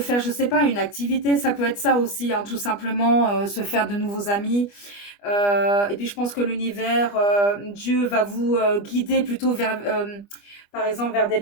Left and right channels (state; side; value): late; right; 25 ms